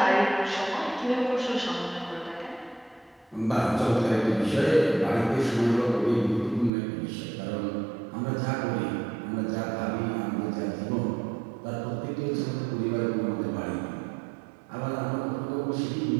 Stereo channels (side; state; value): left; drops out; at 6.7 s